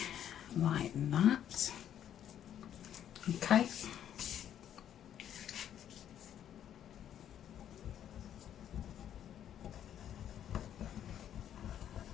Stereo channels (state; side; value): quieter; right; 10.2 dB